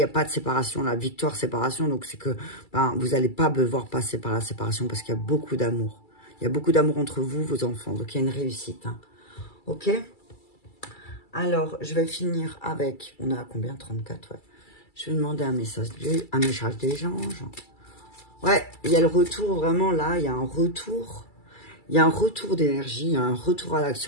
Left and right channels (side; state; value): right; late; 2.3 ms